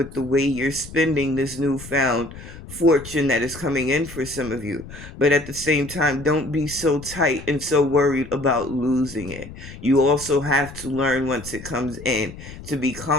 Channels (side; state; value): left; noise; rumble, 15 dB below the sound